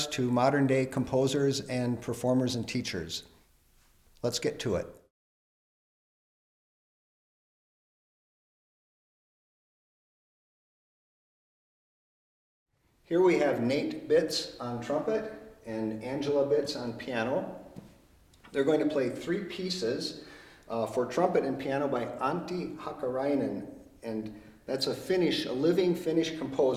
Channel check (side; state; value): both; identical; correlation 1.00